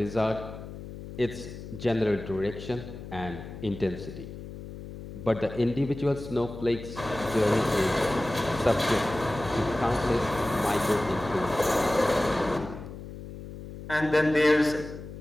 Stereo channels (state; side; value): noise; left; hum, 12 dB below the sound